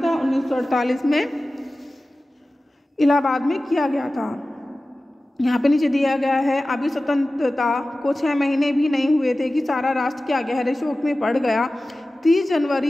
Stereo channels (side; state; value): both; normal; correlation 0.96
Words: था? 1948 में इलाहाबाद में किया गया था। यहाँ पे नीचे दिया गया है, अभी स्वतंत्रता को 6 महीने भी नहीं हुए थे कि सारा राष्ट्र क्या गहरे शोक में पड़ गया। 30